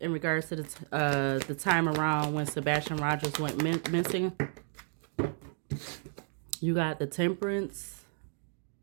regards to the time around when Sebastian Rogers went missing. You got the Temperance,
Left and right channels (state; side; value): silent; left; 56 dB below the other